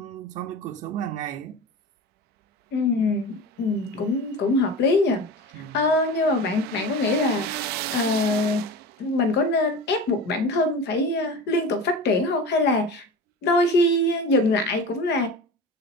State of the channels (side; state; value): both; normal; correlation 0.31